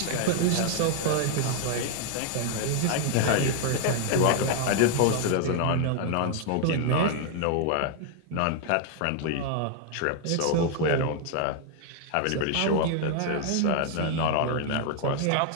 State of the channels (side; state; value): both; different; correlation 0.00